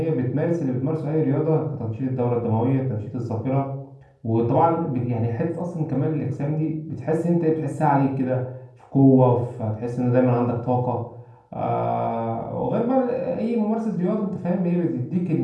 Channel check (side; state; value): both; identical; correlation 1.00